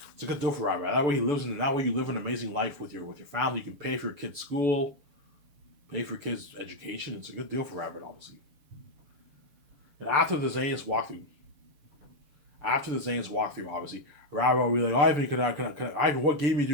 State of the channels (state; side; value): late; left; 6.9 ms